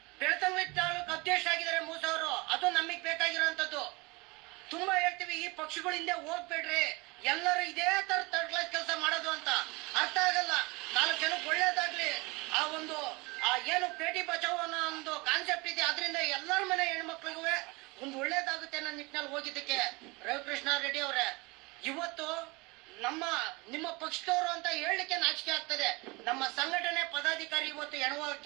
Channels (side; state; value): left; quieter; 25.5 dB